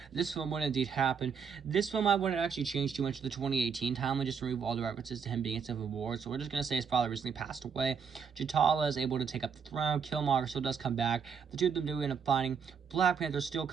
this film would indeed happen, this film I wouldn't actually change too much of the 2018 timeline, just remove all the references to him being in Civil War. So we're just going to say his father recently passed away. T'Challa is able to take up the throne. Killmonger still does come back. The two of them do end up fighting. Black Panther still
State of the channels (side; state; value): left; quieter; 6.5 dB